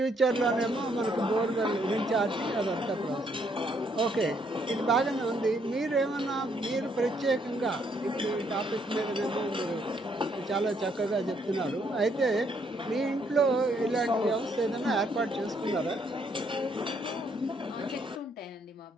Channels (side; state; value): both; normal; correlation 0.71